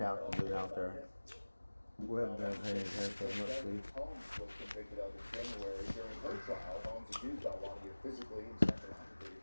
to do out there. We haven't done anything much sleep. Holmes was convicted of in January. During her trial, Holmes accused Balwani of physically and psychologically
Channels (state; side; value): inverted; both; correlation -1.00